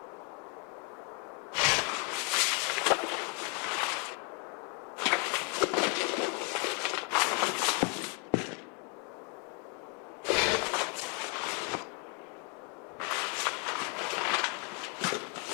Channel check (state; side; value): quieter; right; 36.7 dB